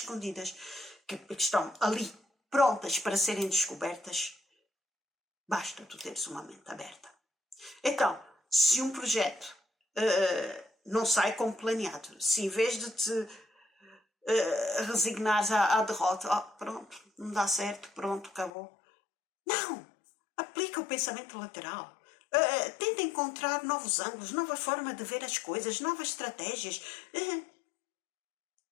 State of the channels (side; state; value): right; drops out; at 18.5 s